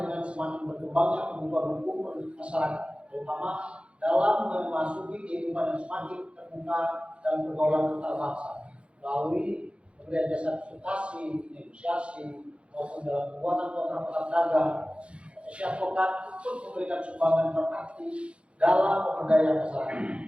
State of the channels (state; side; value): late; left; 0.059 ms